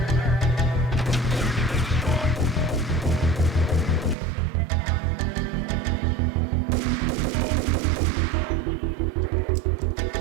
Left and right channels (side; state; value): left; drops out; at 4.2 s